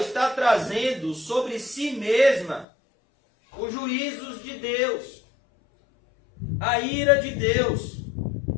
trazendo sobre si mesma os juízos de Deus, a ira de Deus.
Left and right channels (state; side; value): drops out; right; at 2.7 s